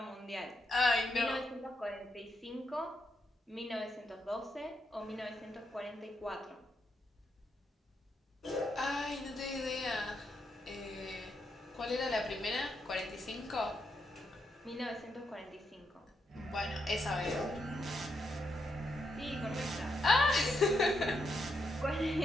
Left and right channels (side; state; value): both; normal; correlation 0.81